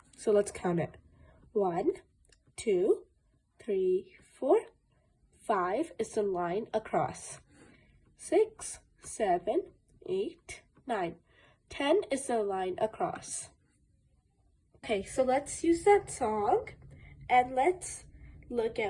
So let's count it. 1, 2, 3, 4. 5 is the line across. 6, 7, 8, 9. 10 is the line across. Okay, so let's use that song and let's look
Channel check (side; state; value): both; identical; correlation 1.00